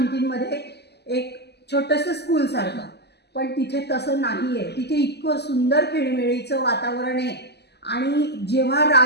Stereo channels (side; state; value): right; late; 0.49 ms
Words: एक छोटंसं स्कूलसारखं, पण तिथे तसं नाही आहे. तिथे इतकं सुंदर खेळीमेळीचं वातावरण आहे आणि जेव्हा